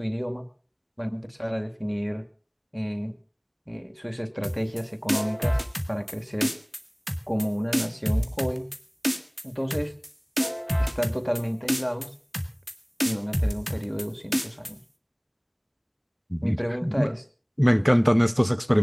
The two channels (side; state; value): both; identical; correlation 1.00